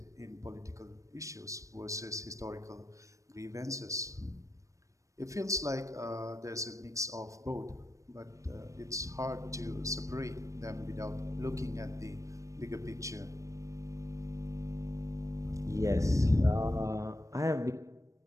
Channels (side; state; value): left; late; 0.15 ms